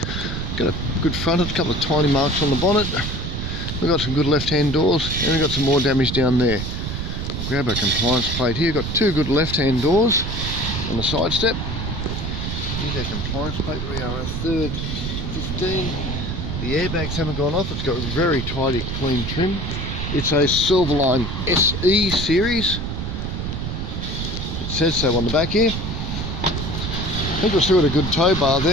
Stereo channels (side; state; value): right; noise; rumble, 4 dB below the sound